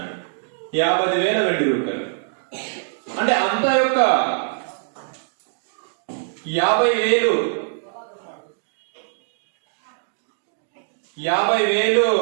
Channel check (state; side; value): silent; left; digital silence